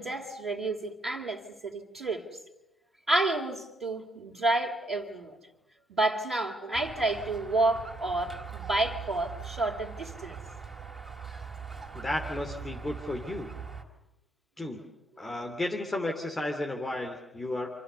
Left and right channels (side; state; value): both; normal; correlation 0.73